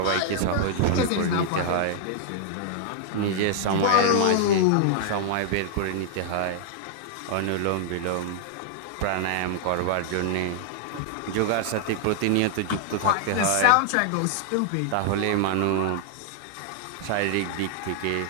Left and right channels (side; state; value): both; different; correlation -0.01